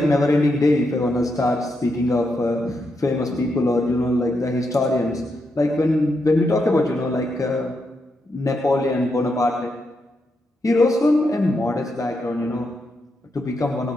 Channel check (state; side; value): normal; both; correlation 0.83